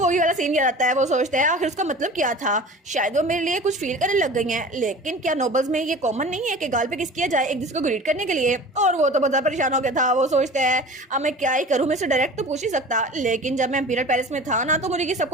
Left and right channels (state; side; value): normal; both; correlation 0.39